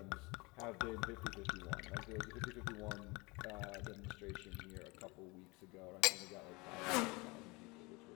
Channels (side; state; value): right; quieter; 25.6 dB